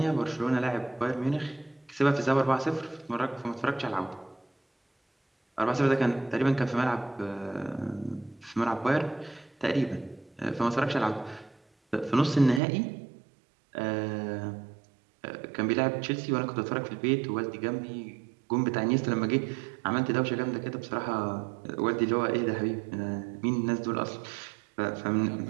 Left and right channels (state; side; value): drops out; left; at 12.6 s